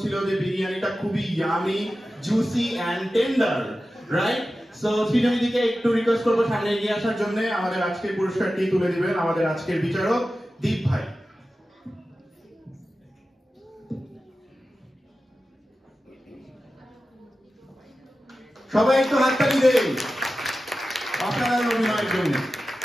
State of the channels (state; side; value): normal; both; correlation 0.93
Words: যে বিরিয়ানিটা খুবই yummy, juicy and tender, right? So Srijani দিকে একটু রিকোয়েস্ট করবো সামনে এগিয়ে আসার জন্য। আমাদের আজকের পুরস্কারটি তুলে দিবেন আমাদের আজকের বিচারক দীপ ভাই। সবাই একটু হাততালি দেন অসাধারণ অভিনয়ের জন্য।